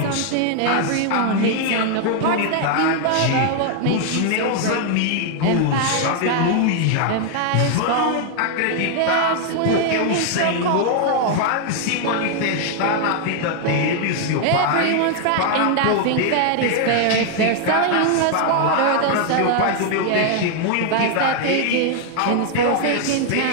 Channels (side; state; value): both; different; correlation 0.00